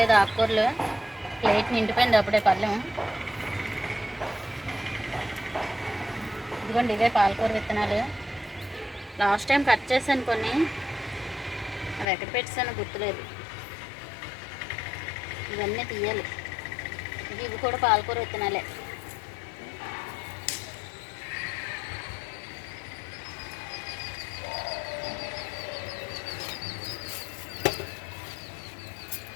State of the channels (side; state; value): right; drops out; at 12.1 s